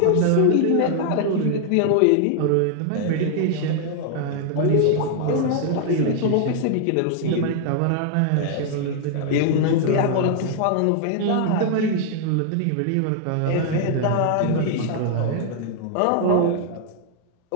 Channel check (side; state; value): both; different; correlation 0.00